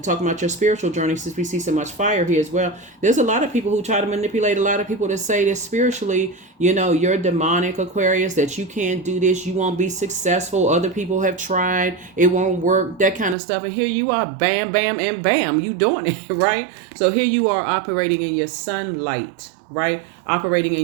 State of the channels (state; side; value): drops out; left; at 13.4 s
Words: about your spiritual journey, since we see so much fire here as well. There's a lot of people who try to manipulate a lot of people to say that spiritually, you're demonic, Aquarius, that you can't do this, you won't be successful. Other people have tried, it won't work, that kind of stuff. And here you are, bam, bam, and bam, you doing it, right? So here you are operating in your sunlight, right? Operating